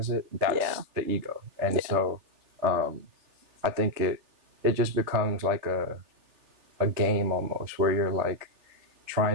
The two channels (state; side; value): late; left; 3.4 ms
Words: it, that's the ego. And so I think it just becomes like a game almost, where you're like